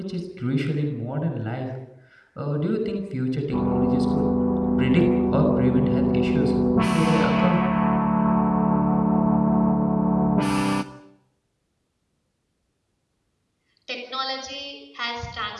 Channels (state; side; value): identical; both; correlation 1.00